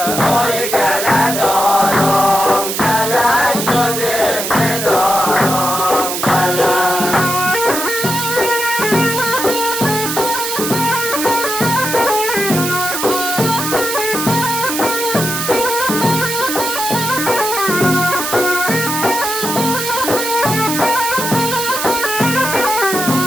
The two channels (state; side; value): noise; right; hiss, 3 dB below the sound